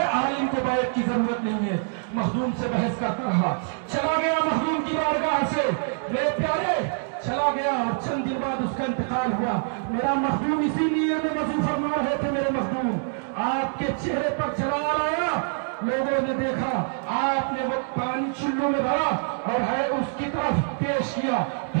आलिम को बैत की जरूरत नहीं है। मखदूम से बहस करता रहा, चला गया मखदूम की बारगाह से। मेरे प्यारे, चला गया और चंद दिन बाद उसका इंतकाल हुआ। मेरा मखदूम इसीलिए में वजू फरमा रहे थे। मेरे मखदूम आपके चेहरे पर जलाल आया, लोगों ने देखा आपने वो पानी चुल्लू में भरा और है उसकी तरफ पेश किया,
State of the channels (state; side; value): silent; left; digital silence